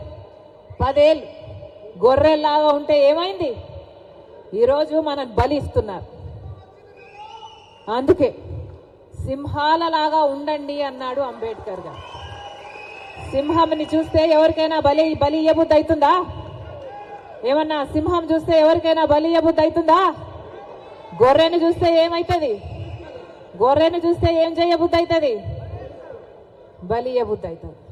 10 ఏళ్ళు గొర్రెల్లాగా ఉంటే ఏమైంది? ఈరోజు మనం బలి ఇస్తున్నారు. అందుకే సింహాలలాగా ఉండండి అన్నాడు అంబేద్కర్ గారు. సింహంని చూస్తే ఎవరికైనా బలి ఇయ్యబుద్ధి అవుతుందా? ఏమన్నా సింహం చూస్తే ఎవరికైనా బలి ఇయ్యబుద్ధి అవుతుందా? గొర్రెను చూస్తే ఏమవుతుంది? గొర్రెను చూస్తే ఏం చేయబుద్ధి అవుతుంది? బలి ఇయ్యబుద్ధి అవుతుంది.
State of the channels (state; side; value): identical; both; correlation 1.00